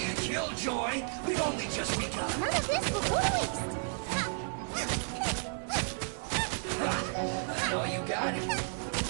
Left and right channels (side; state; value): left; silent; 56 dB below the other